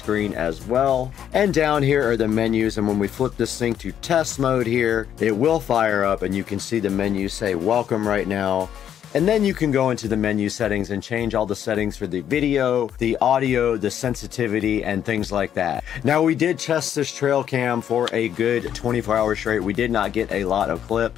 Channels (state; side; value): quieter; right; 9.7 dB